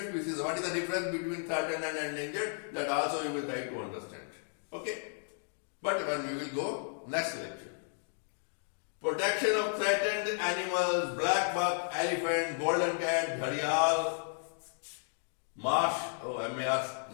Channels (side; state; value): right; silent; 55 dB below the other